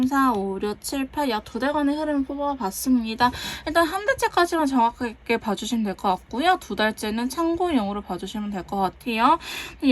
4, 5, 6, 7, 8 약 2달간의 흐름을 뽑아봤습니다. 일단 한 달째까지만 정확하게 봐주시면 될 것 같고요. 2달째는 참고용으로 봐주시면 될 것 같아요.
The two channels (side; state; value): both; identical; correlation 1.00